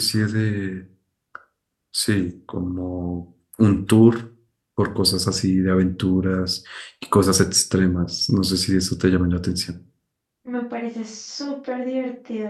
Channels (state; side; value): identical; both; correlation 1.00